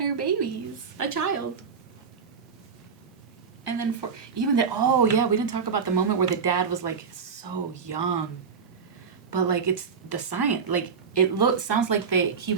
babies. A child. And then we didn't talk about the moment where the dad was like so young. But like it's the science, like sounds like he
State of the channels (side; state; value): left; quieter; 5.9 dB